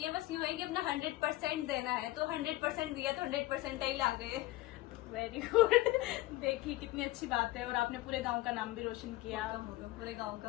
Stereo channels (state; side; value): quieter; right; 18.0 dB